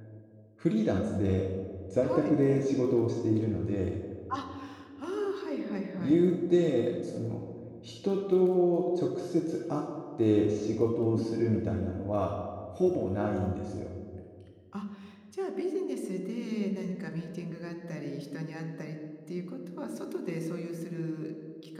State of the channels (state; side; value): identical; both; correlation 1.00